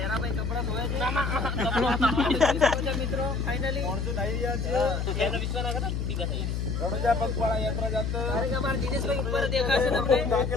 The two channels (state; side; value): noise; left; hum, 1 dB below the sound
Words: કપડા ધોયા છે. મિત્રો ફાઇનલી અમારા દિનેશભાઈ ઉપર દેખાશે તમને.